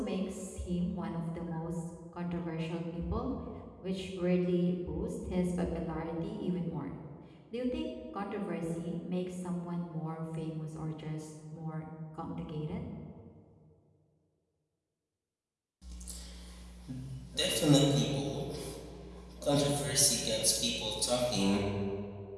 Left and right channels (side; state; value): both; identical; correlation 1.00